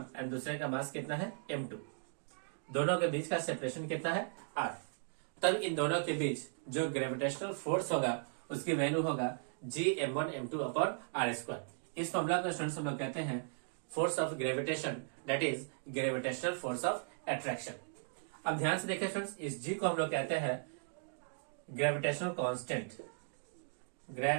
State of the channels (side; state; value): left; silent; digital silence